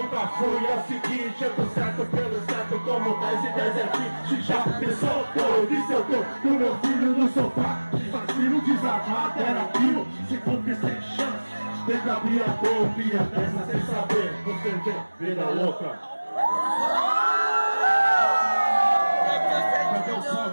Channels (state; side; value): inverted; both; correlation -1.00